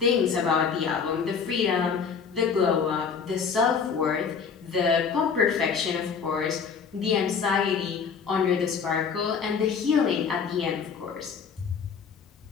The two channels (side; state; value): right; quieter; 6.1 dB